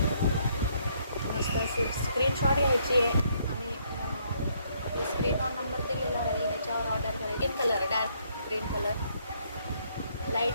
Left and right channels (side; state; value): both; inverted; correlation -0.69